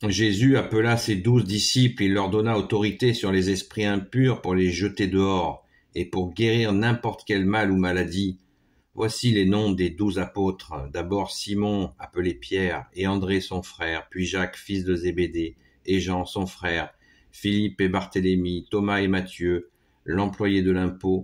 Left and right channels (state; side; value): identical; both; correlation 1.00